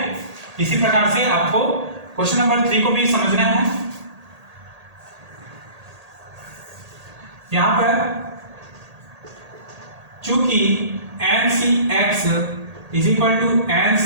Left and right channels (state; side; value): late; left; 1.8 ms